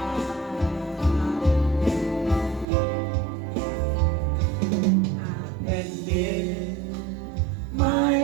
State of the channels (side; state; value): left; drops out; at 2.7 s